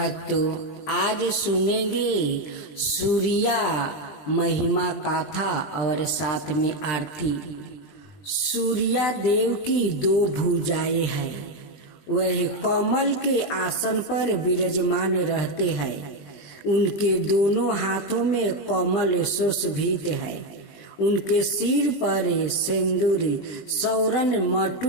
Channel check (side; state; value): right; late; 20 ms